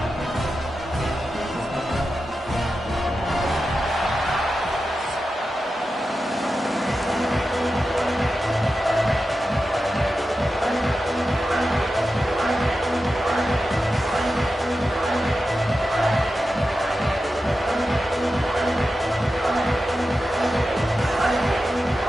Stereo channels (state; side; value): normal; both; correlation 0.91